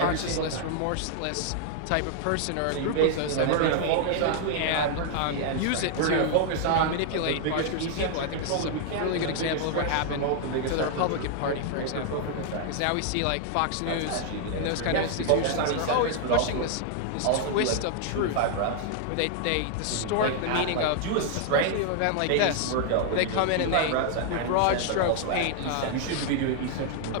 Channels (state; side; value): different; both; correlation 0.00